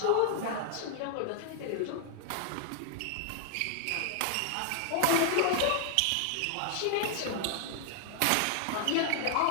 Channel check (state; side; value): different; both; correlation 0.00